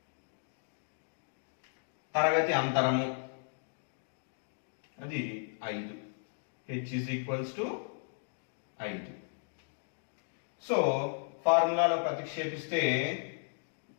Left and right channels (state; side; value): silent; right; digital silence